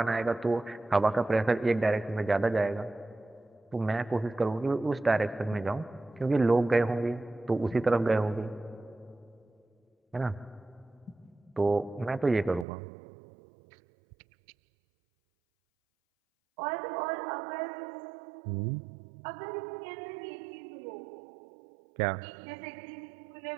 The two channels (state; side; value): drops out; left; at 12.7 s